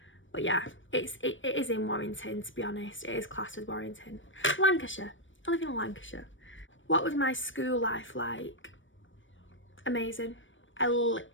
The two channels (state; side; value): late; right; 0.56 ms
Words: But yeah, it is in Warrington, to be honest. It is classed as Warrington. Lancashire. I live in Lancashire. What was my school life like? Amazing. I